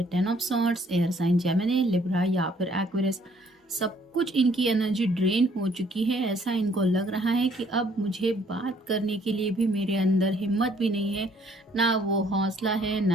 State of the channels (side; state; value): both; normal; correlation 0.62